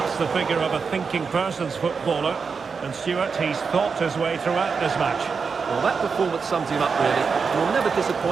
the figure of a thinking person's footballer, and Stuart, he's thought his way throughout this match. Well, that performance sums him up, really. You're never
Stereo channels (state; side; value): quieter; left; 5.4 dB